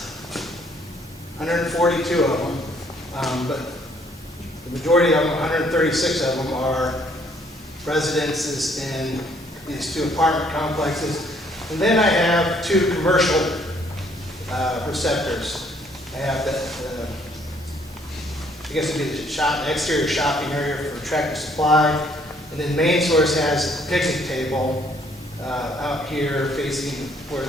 142 of them, but the majority of them, 136 of them, are residences in these 2 apartment complexes. And then I have 2 commercial receptors. I have that, I guess it'd be the exterior shopping area for Tractor Supply. And then main source has a picnic table out here facing where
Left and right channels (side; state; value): both; normal; correlation 0.65